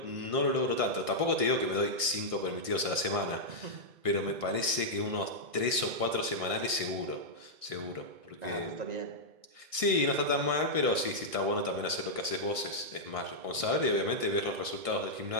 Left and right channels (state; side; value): late; left; 1.6 ms